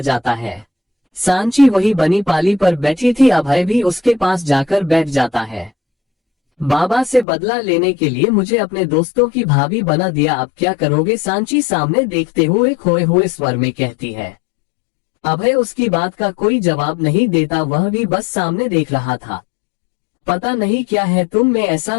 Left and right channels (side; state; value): right; drops out; at 7.2 s